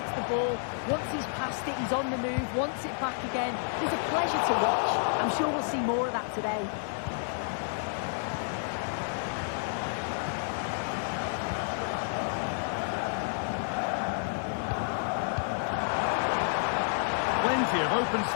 the ball. Once he's passed it, he's on the move, wants it back again. He's a pleasure to watch. I'm sure we'll see more of that today. Plenty of open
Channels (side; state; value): right; silent; digital silence